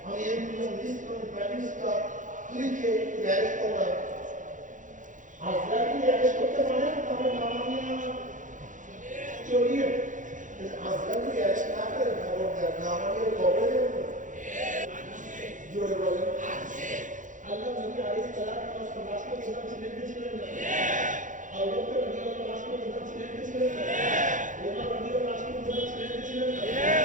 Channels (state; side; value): late; left; 0.37 ms